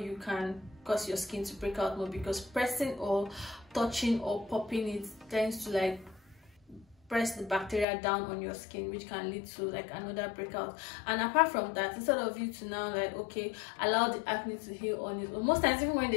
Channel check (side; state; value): right; drops out; at 7.9 s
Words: can cause your skin to break out more, because pressing or touching or popping it tends to like press the bacteria down on your skin, which can lead to like another breakout. And apart from that, instead of you to now like, okay, allow the acne to heal on it, or most times even when